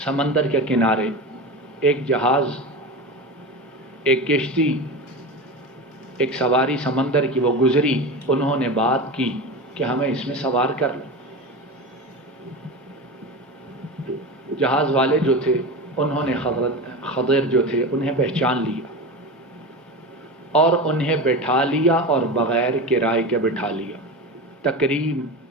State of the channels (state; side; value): normal; both; correlation 0.25